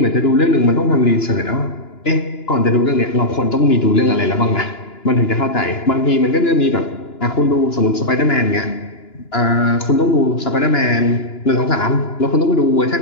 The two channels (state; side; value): late; right; 2.9 ms